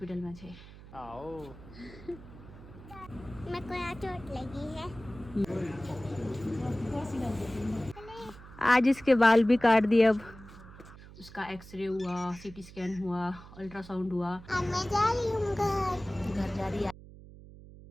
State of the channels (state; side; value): noise; right; hum, 18 dB below the sound